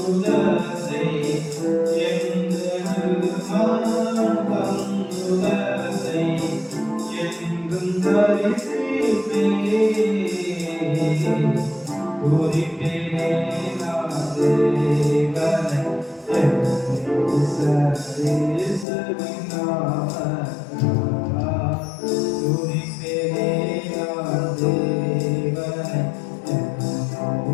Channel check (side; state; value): right; drops out; at 18.9 s